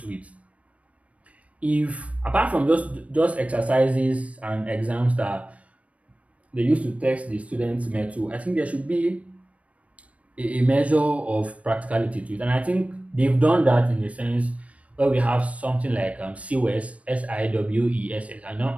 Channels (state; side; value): late; left; 0.065 ms